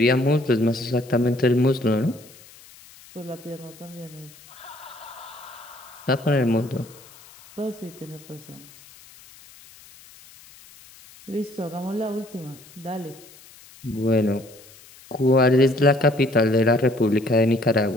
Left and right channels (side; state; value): left; noise; hiss, 23 dB below the sound